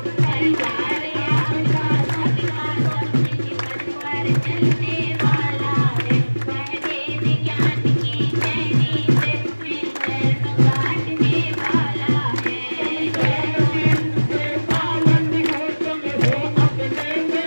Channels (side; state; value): both; inverted; correlation -1.00